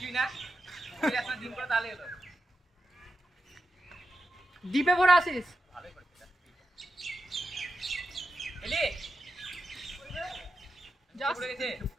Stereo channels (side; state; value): both; normal; correlation 0.88